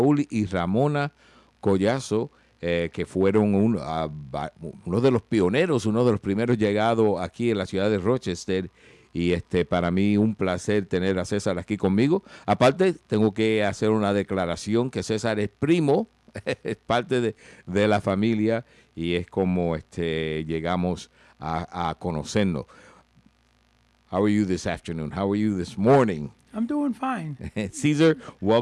y Ramona Collazo, que fueron uno de los pioneros, uno de los primeros llegados aquí en la ciudad de Rochester. Y para mí un placer tener a César aquí conmigo. Aparte, tengo que hacer una declaración que César es primo, es parte de la familia y es como llegamos a conocernos. How are you this afternoon? How are you this morning? I'm doing fine. Cesar,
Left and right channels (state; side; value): identical; both; correlation 1.00